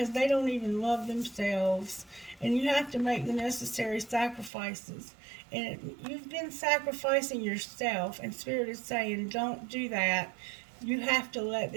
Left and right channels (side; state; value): left; drops out; at 4.5 s